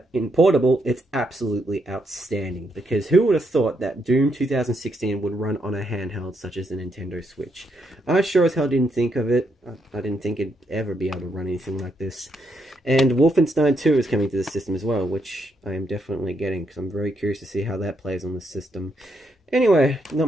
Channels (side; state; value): both; normal; correlation 0.78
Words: in portable, it's absolutely outstanding, because who would have thought that Doom 2016 would run on a handheld such as the Nintendo Switch? I sure as hell didn't think of it. I didn't think it'd ever be able to run anything like this. And Wolfenstein 2 is coming to the system as well, which I am definitely getting, because I'm very curious to see how that plays on the system. Anyway, not